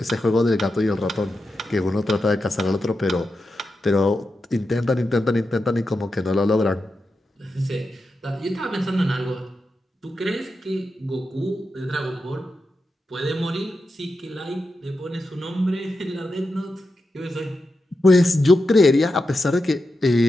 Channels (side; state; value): both; normal; correlation 0.89